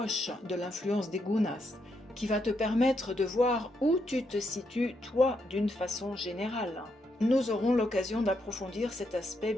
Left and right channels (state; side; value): normal; both; correlation 0.79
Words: de l'influence des gunas, qui va te permettre de voir où tu te situes, toi, d'une façon générale. Nous aurons l'occasion d'approfondir cet aspect